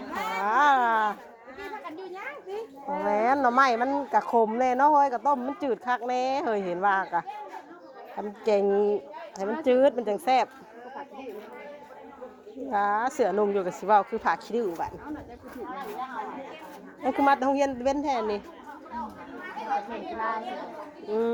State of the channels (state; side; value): identical; both; correlation 1.00